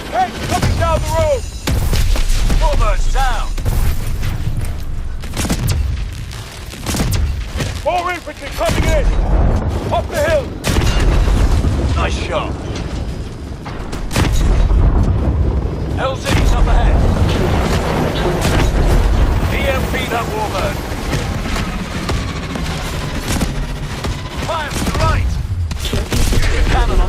Hey, coming down the road. Warbird's down! More infantry coming in. Up the hill. Nice shot! LZ's up ahead! EMP that Warbird! Fire to the right! Use your cannon on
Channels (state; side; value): identical; both; correlation 1.00